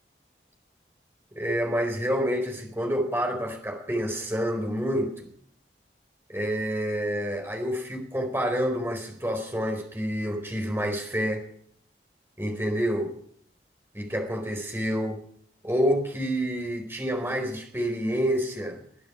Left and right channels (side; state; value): both; normal; correlation 0.73